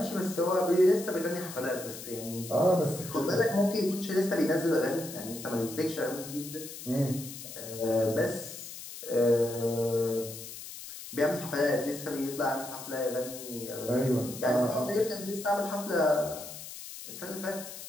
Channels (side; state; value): left; noise; hiss, 11 dB below the sound